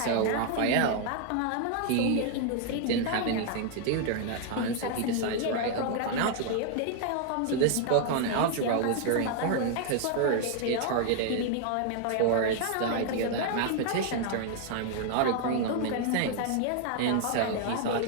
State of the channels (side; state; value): both; different; correlation 0.00